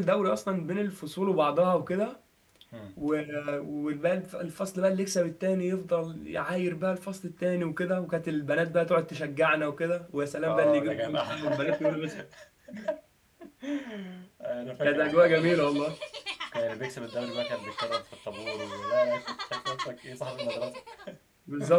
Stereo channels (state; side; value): identical; both; correlation 1.00